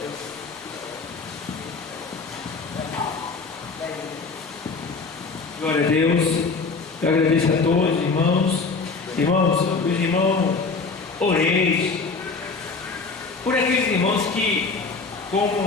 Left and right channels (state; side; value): quieter; right; 4.3 dB